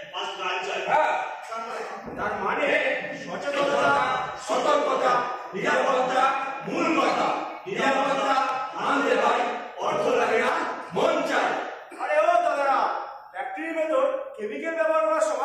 ফার্স্ট গান চাই। হ্যাঁ, তার মানে সচেতনতা, সতর্কতা, নিরাপত্তা মূল কথা। নিরাপত্তা আনতে হয়, অর্থ লাগে না, মন চাই। আরে ও দাদারা, ফ্যাক্টরির ভেতর কেমিক্যাল ব্যবহার করার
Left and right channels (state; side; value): identical; both; correlation 1.00